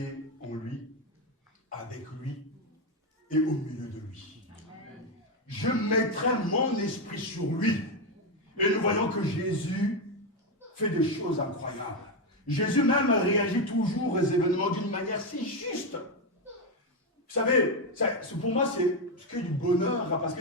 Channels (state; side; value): normal; both; correlation 0.08